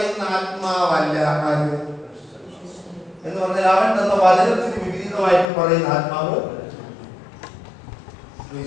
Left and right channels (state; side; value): drops out; right; at 5.5 s